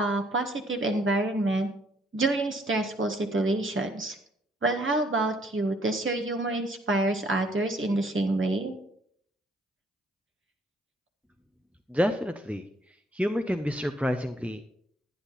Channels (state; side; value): normal; both; correlation 0.65